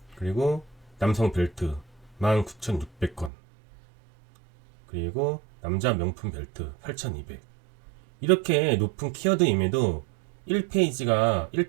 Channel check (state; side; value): drops out; left; at 3.3 s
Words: 그리고 남성 벨트 19,600건, 그리고 남자 명품 벨트 8,200. 이렇게 높은 키워드임에도